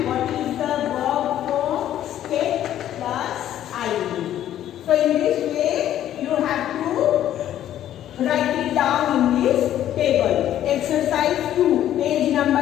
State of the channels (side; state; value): right; quieter; 11.7 dB